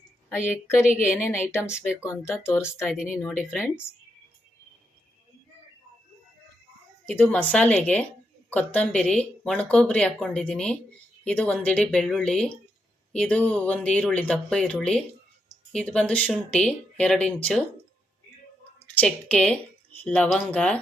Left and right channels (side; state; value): both; normal; correlation 0.81